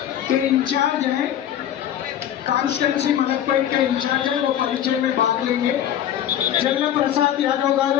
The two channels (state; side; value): quieter; right; 10.7 dB